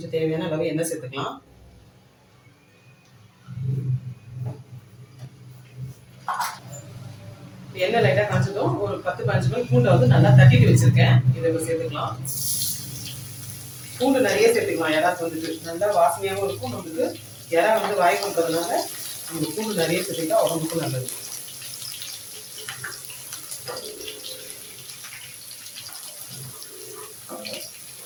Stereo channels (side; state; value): both; identical; correlation 1.00